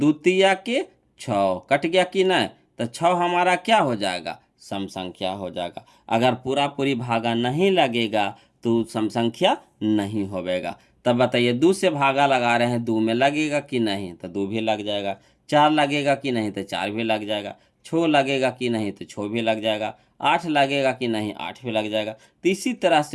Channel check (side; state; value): both; identical; correlation 1.00